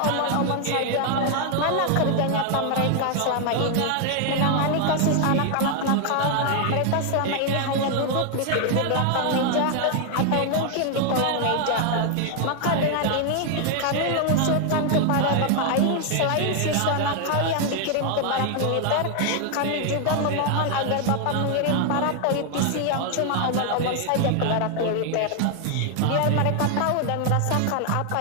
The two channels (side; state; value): both; different; correlation 0.00